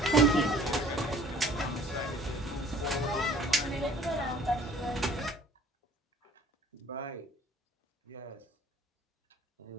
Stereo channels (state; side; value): normal; both; correlation 0.53